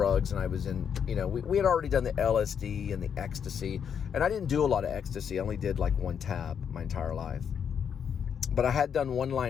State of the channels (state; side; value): quieter; right; 7.7 dB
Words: and I was in, you know, we had already done the LSD and the ecstasy. And I didn't do a lot of ecstasy. I only did like 1 tab my entire life. But I had done 1